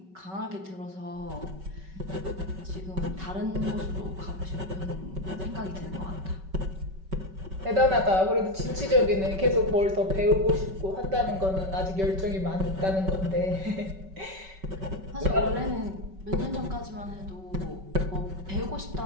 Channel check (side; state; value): left; late; 5.3 ms